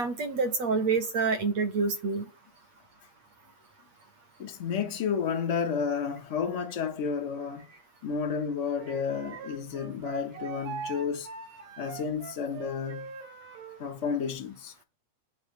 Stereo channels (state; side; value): late; left; 8.4 ms